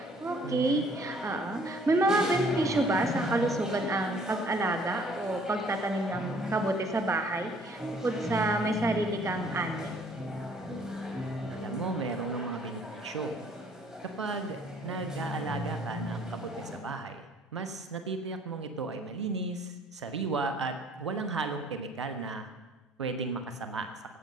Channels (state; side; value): normal; both; correlation 0.58